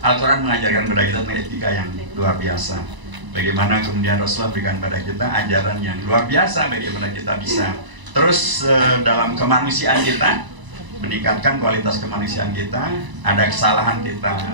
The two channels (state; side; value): late; left; 1.0 ms